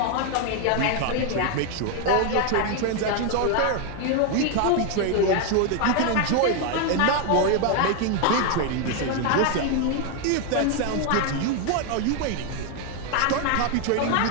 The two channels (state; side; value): different; both; correlation 0.01